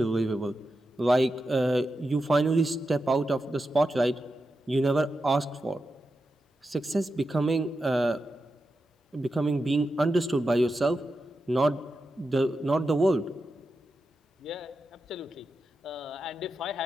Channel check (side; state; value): both; normal; correlation 0.89